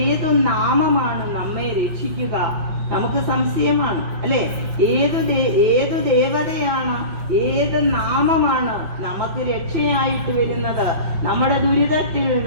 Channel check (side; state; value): left; late; 5.6 ms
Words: ഏതു നാമമാണ് നമ്മെ രക്ഷിക്കുക, നമുക്ക് സംശയമാണ്, അല്ലെ? ഏതു ദേവതയാണ്, ഏത് നാമമാണ് നമുക്ക് രക്ഷയായിട്ട് വരുന്നത്? നമ്മുടെ ദുരിതത്തിൽ,